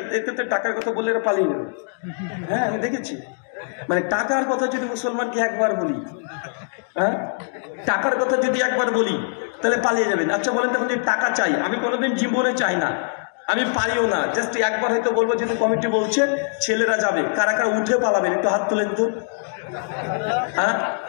তো টাকার কথা বলে এরা পালিয়ে গেল। হ্যাঁ, আমি দেখেছি। মানে টাকার কথা যদি মুসলমানকে একবার বলি, হ্যাঁ টাকার কথা যদি একবার বলি তাহলে পালিয়ে যাবেন। আচ্ছা বলেন তো, আপনি টাকা চাই? আমি কোনোদিন জীবনে চাই না, আমি পারিও না। জাস্ট একবার হয়তো বলবো যেহেতু কমিটি বলছে ছেলেরা যাবে, কারা কারা উঠে পালাবেন একটু হাত তুলেন তো। হ্যাঁ,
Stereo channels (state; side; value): silent; right; digital silence